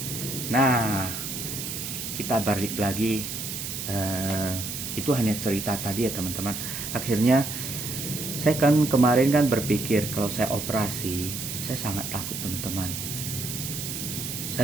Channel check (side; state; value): right; noise; hiss, 5 dB below the sound